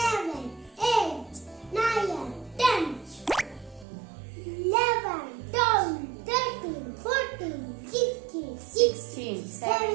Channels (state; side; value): drops out; left; at 3.9 s